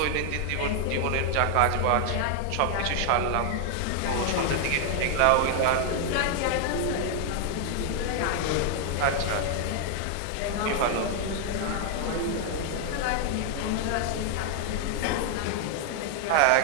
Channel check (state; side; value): different; both; correlation 0.00